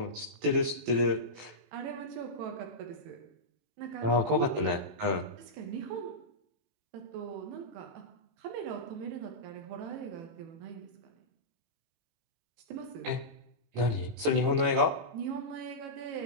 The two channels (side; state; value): left; late; 18 ms